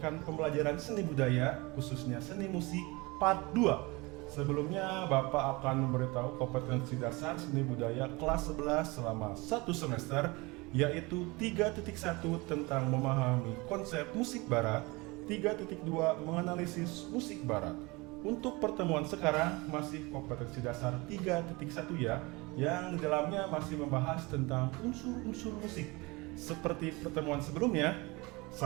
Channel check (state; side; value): quieter; left; 24.6 dB